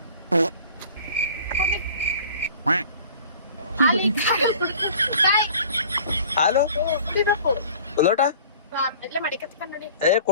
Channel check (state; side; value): inverted; both; correlation -0.46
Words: ಹಾಲು ಲೋಟ ಎಲ್ಲ ಮಡಿ ಕತ್ಕೊಂಡ್ ನೋಡಿ.